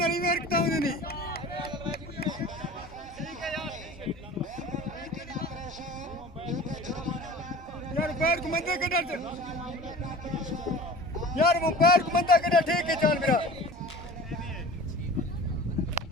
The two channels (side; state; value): both; normal; correlation 0.40